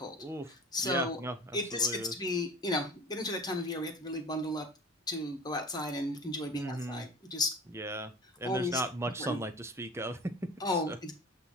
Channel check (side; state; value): both; normal; correlation 0.39